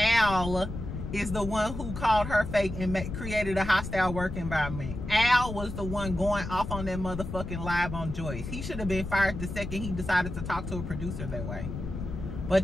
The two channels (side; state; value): left; noise; rumble, 7 dB below the sound